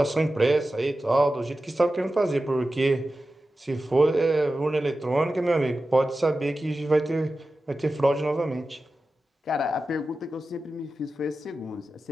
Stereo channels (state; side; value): normal; both; correlation 0.93